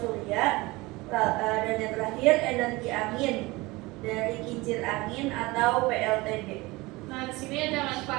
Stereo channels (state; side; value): quieter; left; 22.0 dB